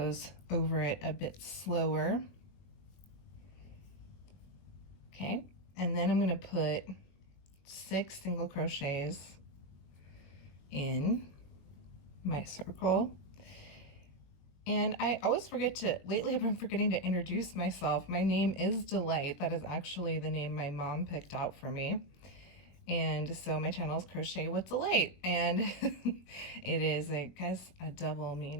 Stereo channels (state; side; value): late; right; 21 ms